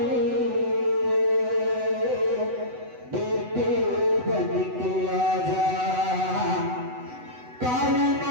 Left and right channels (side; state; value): left; late; 8.0 ms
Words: बेटे बन के आजा काली